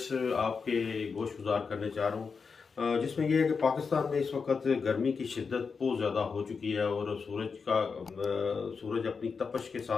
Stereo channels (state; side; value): quieter; right; 5.3 dB